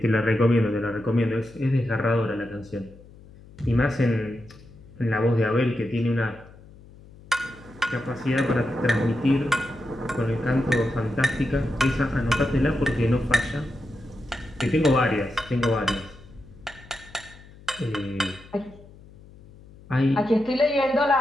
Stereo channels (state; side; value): noise; left; hum, 22 dB below the sound